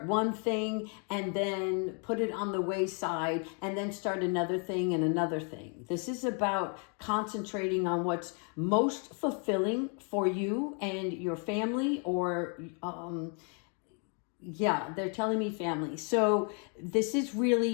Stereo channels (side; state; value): right; quieter; 38.5 dB